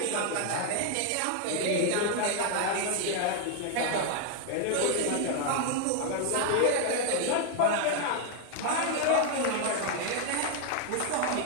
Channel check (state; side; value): different; both; correlation 0.01